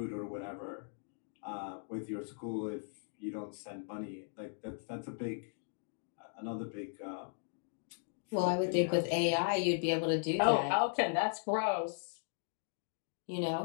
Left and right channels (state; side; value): silent; right; digital silence